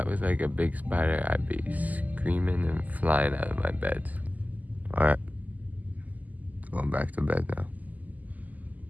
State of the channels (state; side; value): late; left; 0.079 ms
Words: was like a big spider, I'd be screaming and flying out of my bed. All right, going back to bed now.